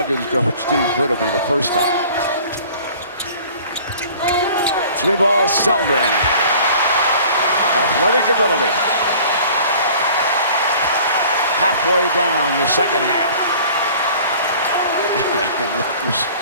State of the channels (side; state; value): both; inverted; correlation -0.48